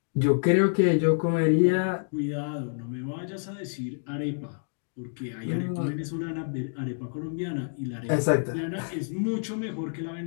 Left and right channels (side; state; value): right; silent; digital silence